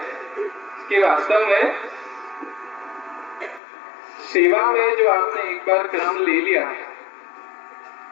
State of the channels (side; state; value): right; drops out; at 3.6 s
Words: कि वास्तव में सेवा में जो आपने एक बार क्रम ले लिया,